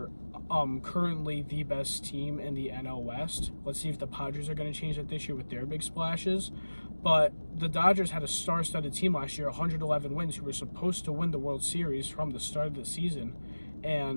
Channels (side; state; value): both; inverted; correlation -1.00